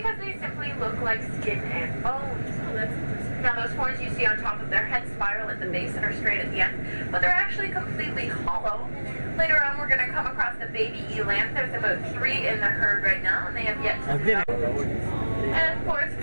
they simply look like skin and bones. Now those horns you see on top of their head spiral at the base and are straight at the end, but they're actually completely hollow. Later on we're going to come across the baby eland. There's about 3 in the herd right now, and they have yet to develop. And of course,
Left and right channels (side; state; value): both; inverted; correlation -1.00